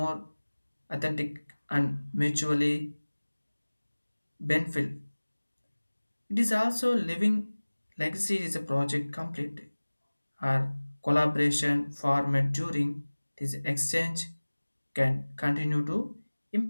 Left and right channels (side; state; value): both; inverted; correlation -1.00